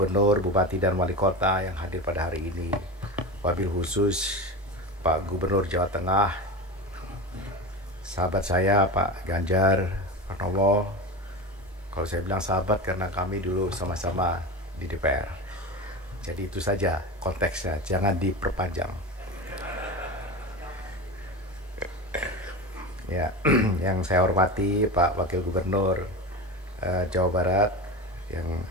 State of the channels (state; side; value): normal; both; correlation 0.25